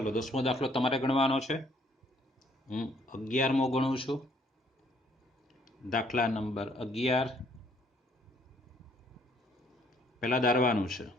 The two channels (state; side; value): normal; both; correlation 0.64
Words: 10મો દાખલો તમારે ગણવાનો છે. હું 11મો ગણું છું. દાખલા નંબર 11 પહેલા ધારવાનું છે.